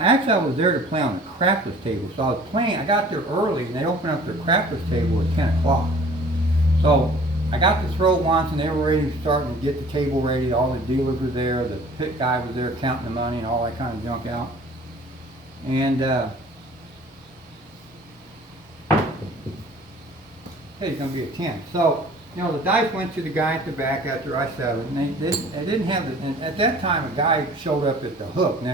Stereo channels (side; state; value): both; normal; correlation 0.49